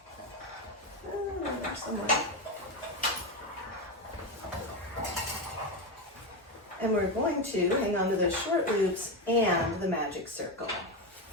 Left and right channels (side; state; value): both; normal; correlation 0.13